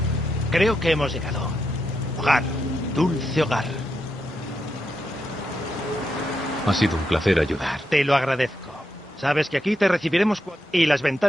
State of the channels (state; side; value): normal; both; correlation 0.84